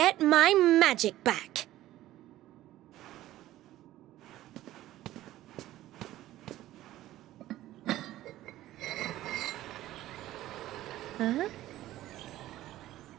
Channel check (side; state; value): left; quieter; 14.8 dB